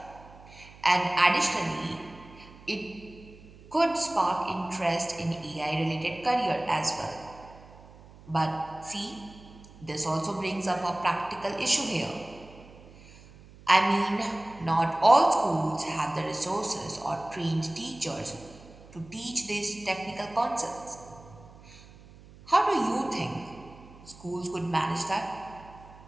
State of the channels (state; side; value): noise; right; hum, 21 dB below the sound